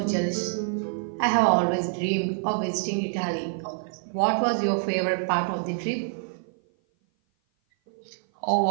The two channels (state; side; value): silent; left; 56 dB below the other